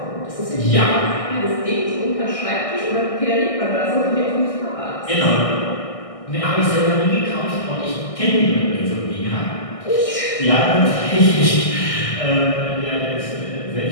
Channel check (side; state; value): right; late; 1.6 ms